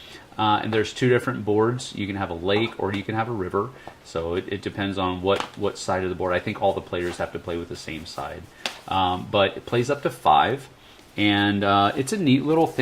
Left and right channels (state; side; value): identical; both; correlation 1.00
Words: And there's two different boards. You can have a lake or you can have a river, so it depends on what side of the board. I think all the players have to play with the same side, but it plays up to 5. And it's a neat little